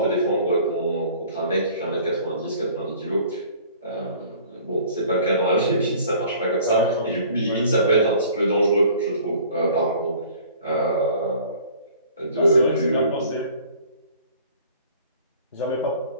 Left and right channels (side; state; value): both; inverted; correlation -0.51